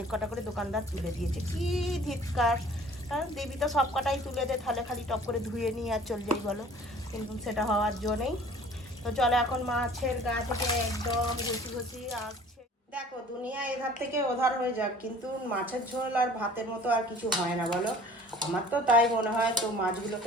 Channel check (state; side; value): normal; both; correlation 0.49